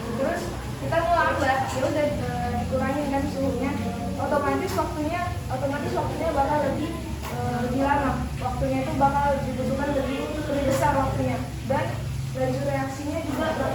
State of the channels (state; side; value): identical; both; correlation 1.00